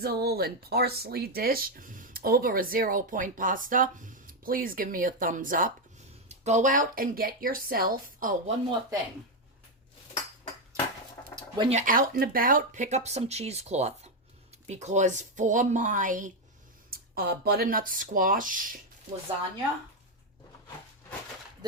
and parsley dish over a 0-point pasta, please give me a thumbs up. Go out and get yourself, oh, one more thing. When you're out and about, pick up some cheesecloth, because for my butternut squash lasagna,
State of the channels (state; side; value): normal; both; correlation 0.05